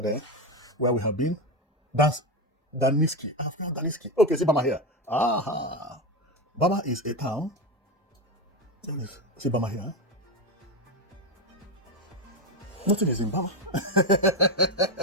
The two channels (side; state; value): both; normal; correlation 0.13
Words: where we have been. That's Daniski. I've got Daniski. Okay, see Bama here. Aha. Bama is a town. See Bama here. Nothing is in Bama.